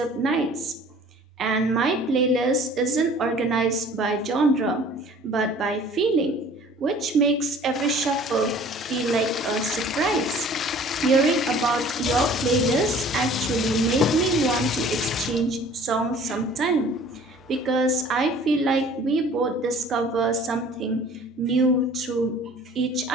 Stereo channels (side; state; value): both; normal; correlation 0.50